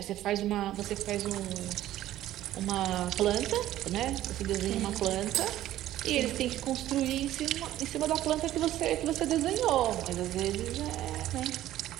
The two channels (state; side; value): quieter; left; 13.7 dB